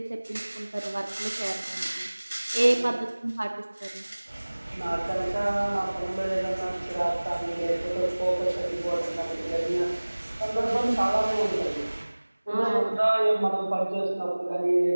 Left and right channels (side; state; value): both; inverted; correlation -1.00